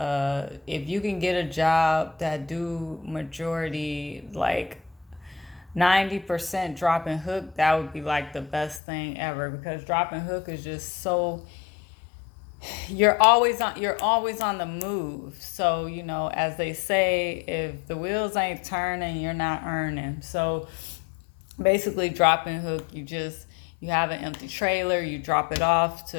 if you can get a job that do majority like 90% drop and hook, that would be like the best thing ever, because drop and hook is just so you're always on the move. So, as they say, if the wheels ain't turning, you're not earning. So basically, drop and hook, you have an empty trailer, you drop it off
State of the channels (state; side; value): drops out; right; at 8.8 s